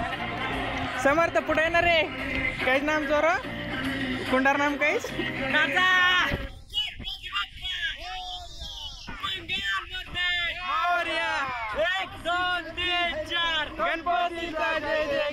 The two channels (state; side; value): identical; both; correlation 1.00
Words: समर्थ पुढे येणार रे काहीच नाम जोर कुंडार नाम काहीच गणपतीचा जय